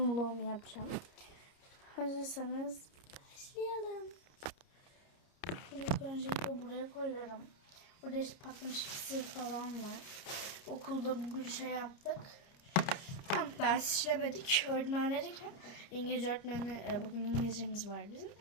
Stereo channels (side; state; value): right; late; 29 ms